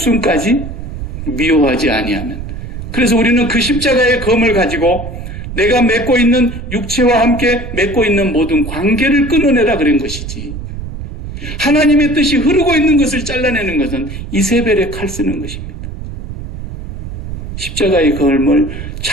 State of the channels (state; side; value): noise; right; rumble, 9 dB below the sound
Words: 미워하지 아니하면. 그래서 우리는 그 십자가의 검을 가지고 내가 맺고 있는 육체와 함께 맺고 있는 모든 관계를 끊어내라 그런 것이지. 하나님의 뜻이 흐르고 있는 것을 잘라내는 것은 이세벨의 칼 쓰는 것입니다. 십자가의 검을